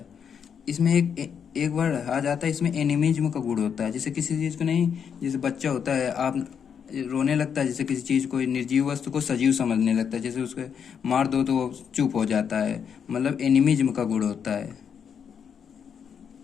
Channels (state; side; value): quieter; right; 7.4 dB